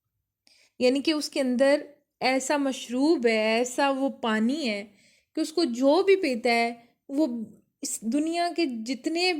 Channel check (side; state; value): both; identical; correlation 1.00